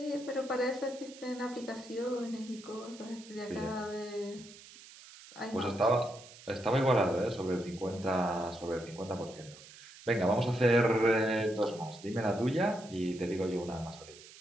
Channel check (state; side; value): noise; right; hiss, 19 dB below the sound